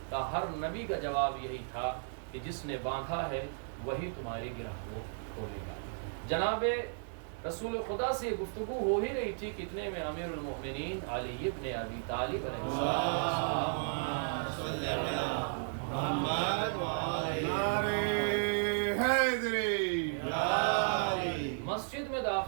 کہا ہر نبی کا جواب یہی تھا کہ جس نے باندھا ہے وہی تمہاری گرہ کو کھولے گا۔ جناب رسول خدا سے گفتگو ہو ہی رہی تھی، کتنے میں امیر المؤمنین علی ابن ابی طالب علیہ السلام مسجد میں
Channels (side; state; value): left; silent; digital silence